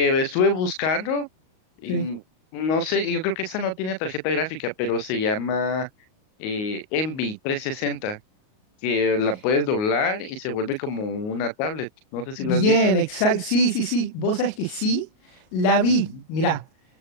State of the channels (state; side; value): late; right; 38 ms